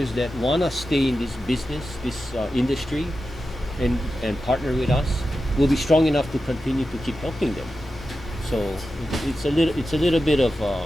that want to stay in this business, this industry, and partner with us. We'll be strong enough to continue to keep helping them. So it's a little bit of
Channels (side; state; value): both; normal; correlation 0.91